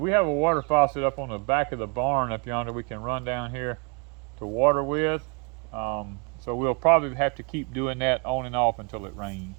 have a water faucet up on the back of the barn up yonder we can run down here to water with. So we'll probably have to keep doing that on and off until it rains.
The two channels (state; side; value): quieter; left; 33.6 dB